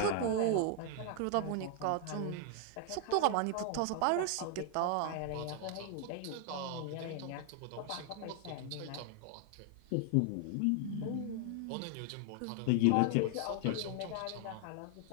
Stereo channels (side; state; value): both; different; correlation 0.00